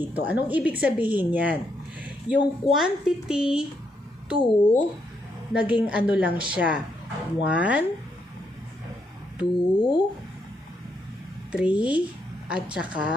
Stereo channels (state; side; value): normal; both; correlation 0.77